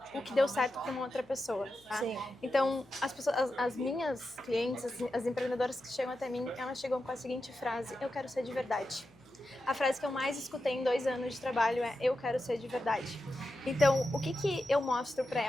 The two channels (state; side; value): noise; left; hum, 29 dB below the sound